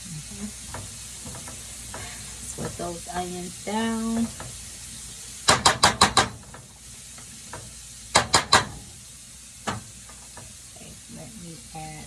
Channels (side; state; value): both; identical; correlation 1.00